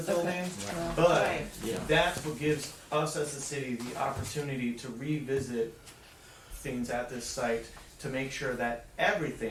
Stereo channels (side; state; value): both; identical; correlation 1.00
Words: building, but Right. Yeah. that's what gives us as a city the opportunity to revisit things at this site to make sure that